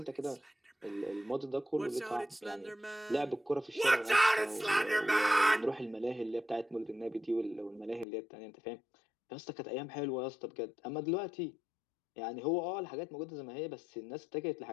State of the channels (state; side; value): drops out; right; at 8.1 s